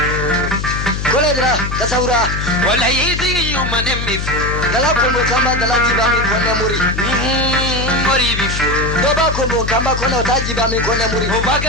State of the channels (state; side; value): noise; left; hum, 4 dB below the sound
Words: Kole dira kasaura. Wallahi si yo manem mi fu. Dala kombo kamba dala jibami kone muri. Muri bifu. Doba kombo kamba kone otajibami kone muri.